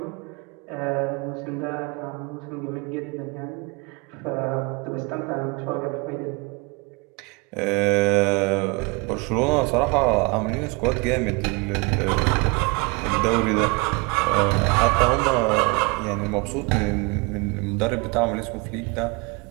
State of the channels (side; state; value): left; quieter; 28.8 dB